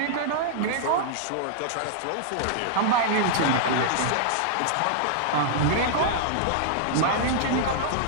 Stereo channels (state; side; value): different; both; correlation -0.01